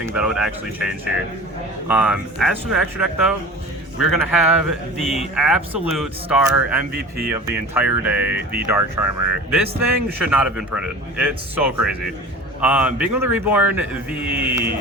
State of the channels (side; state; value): both; normal; correlation 0.38